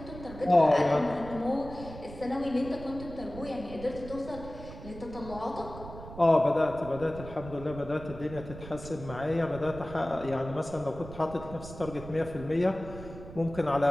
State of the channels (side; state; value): right; noise; rumble, 13 dB below the sound